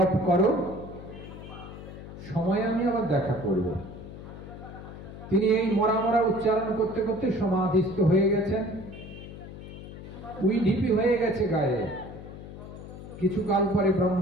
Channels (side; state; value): left; noise; hum, 13 dB below the sound